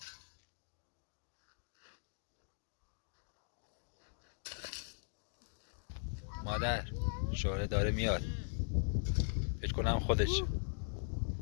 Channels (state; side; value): silent; right; digital silence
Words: مادر شوره داره میاد فکر کنم خودش